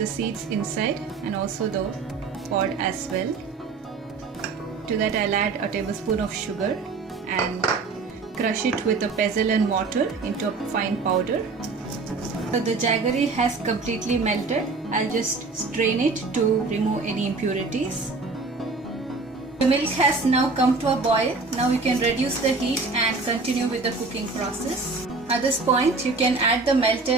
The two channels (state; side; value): quieter; left; 4.0 dB